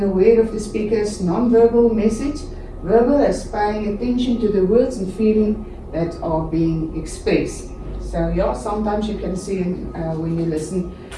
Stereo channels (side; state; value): both; identical; correlation 1.00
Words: aware of the speaker's non-verbal message, verbal as paying attention to the words and feeling that are being expressed. So yeah, sometimes you can see when you listen